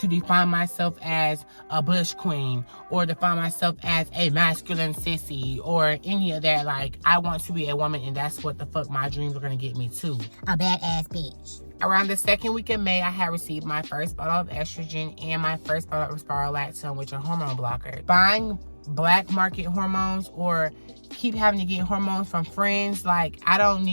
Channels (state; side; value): inverted; both; correlation -1.00